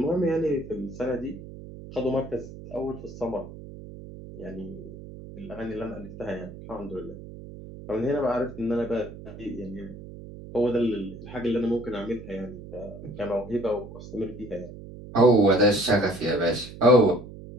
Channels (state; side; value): noise; right; hum, 14 dB below the sound